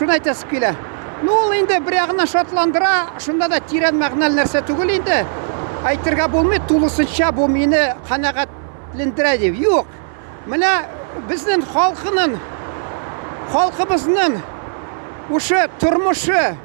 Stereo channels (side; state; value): left; silent; 57 dB below the other